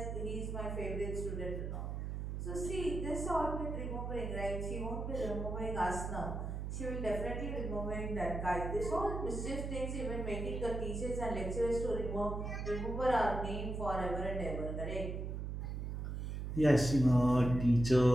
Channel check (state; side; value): noise; right; hum, 4 dB below the sound